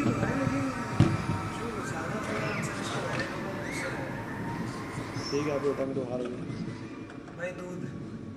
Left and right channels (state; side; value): identical; both; correlation 1.00